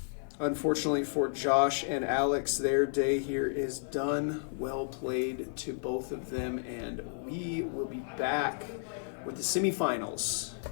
Unfortunately for Josh and Alex, their day here is done. Well played to both of them, and we will be back with the semifinals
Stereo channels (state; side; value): silent; right; digital silence